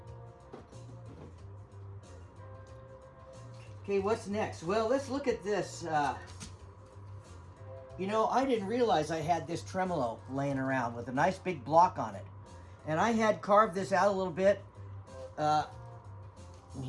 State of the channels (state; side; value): identical; both; correlation 1.00